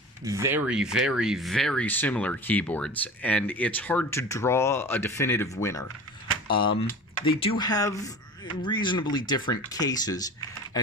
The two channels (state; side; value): normal; both; correlation 0.37